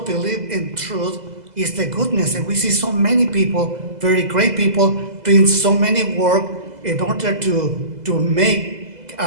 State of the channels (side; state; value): left; late; 2.0 ms